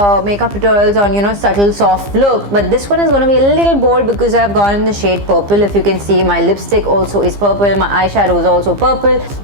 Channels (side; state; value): left; late; 15 ms